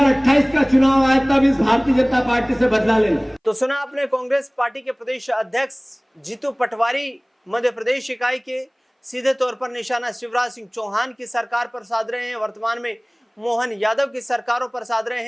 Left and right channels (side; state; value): both; identical; correlation 1.00